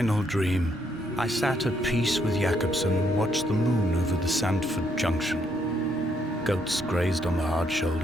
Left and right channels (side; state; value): both; normal; correlation 0.73